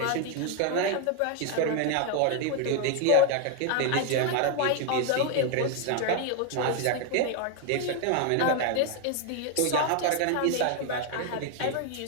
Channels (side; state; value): both; different; correlation 0.01